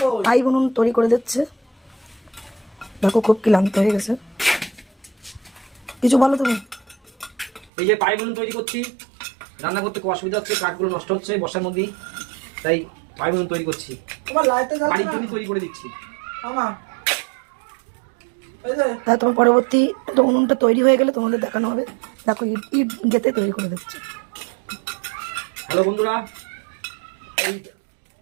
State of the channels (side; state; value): left; drops out; at 7.7 s